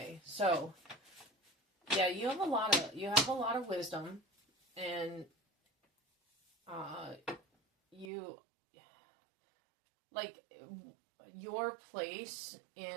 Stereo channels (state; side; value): drops out; left; at 8.1 s